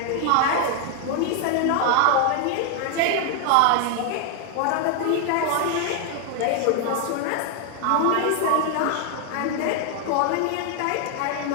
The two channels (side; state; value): both; different; correlation 0.00